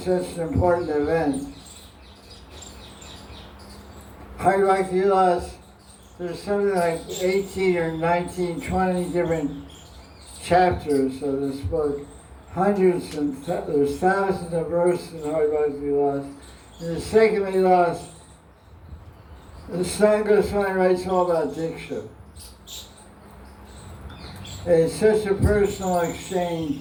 an important event. Hari Bhakti Vilas, there's something like 18 or 19, 20 different chapters of this book. Hundreds and there's thousands of verses in Hari Bhakti Vilas. In the second Vilas, the Satsang Goswami writes all about Diksha. It's such a personal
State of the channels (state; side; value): identical; both; correlation 1.00